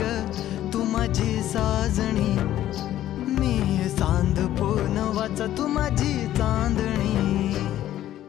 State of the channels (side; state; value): right; quieter; 12.9 dB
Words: तू माझी साजणी, मी चांद पूनवाचा तू माझी चांदणी.